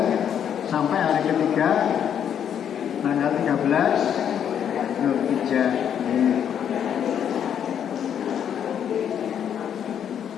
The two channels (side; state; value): right; quieter; 8.9 dB